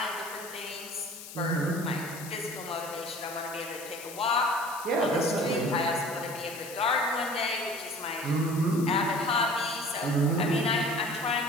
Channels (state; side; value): noise; left; hiss, 13 dB below the sound